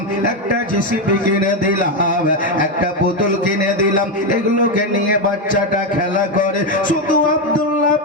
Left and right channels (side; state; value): both; normal; correlation 0.07